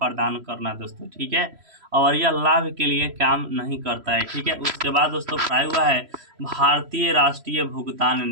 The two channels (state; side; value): late; left; 3.1 ms